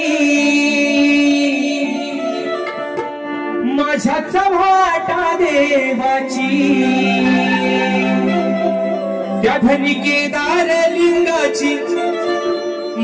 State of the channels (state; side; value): identical; both; correlation 1.00